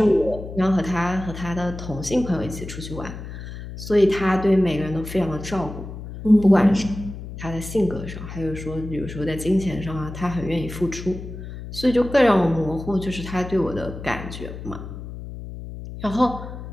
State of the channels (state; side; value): noise; left; hum, 10 dB below the sound